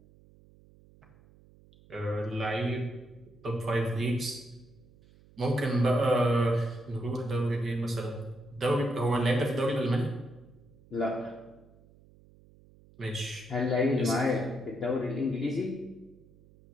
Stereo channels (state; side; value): noise; right; hum, 26 dB below the sound